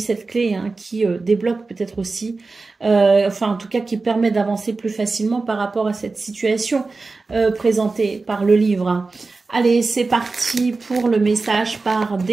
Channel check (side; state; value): left; quieter; 3.8 dB